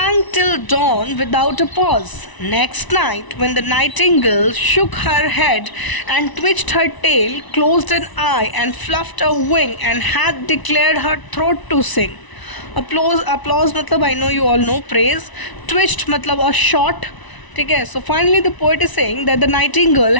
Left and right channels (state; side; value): late; right; 1.0 ms